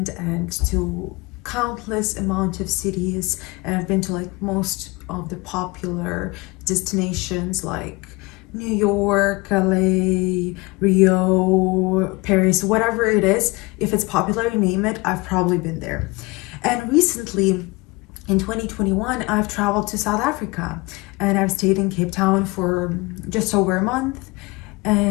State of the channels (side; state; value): right; quieter; 24.9 dB